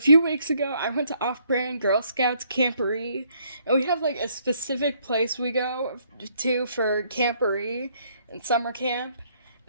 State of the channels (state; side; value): inverted; both; correlation -0.68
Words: weeks ago, I went to Off-Brand Girl Scouts Camporee, and we have like a specific place we go to for Camporee and summer camp.